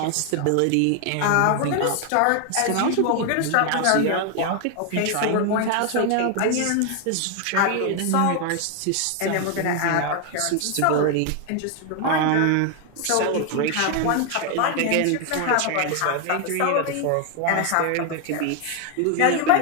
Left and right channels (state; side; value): different; both; correlation 0.01